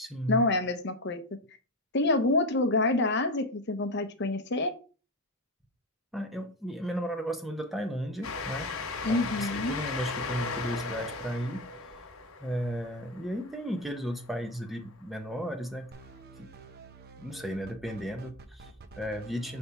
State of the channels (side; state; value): both; normal; correlation 0.19